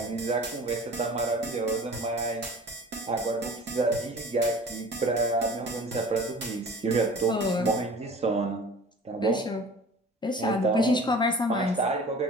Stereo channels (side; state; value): both; normal; correlation 0.43